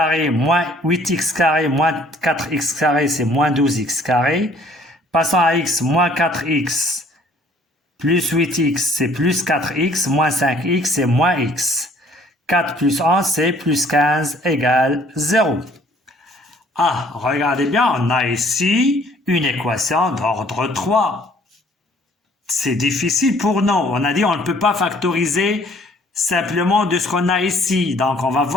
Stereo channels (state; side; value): normal; both; correlation 0.58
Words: moins 8x carré moins 4x carré, c'est moins 12x carré. Passons à x, moins 4x plus 8x, c'est plus 4x, moins 5x, c'est moins x. 4 plus 11, c'est plus 15 égale 0. Ah, regardez bien, on a ici une équation d'ordre 3. C'est difficile pour nous. On a dit on ne peut pas factoriser simplement de ce qu'on a ici. Donc, on va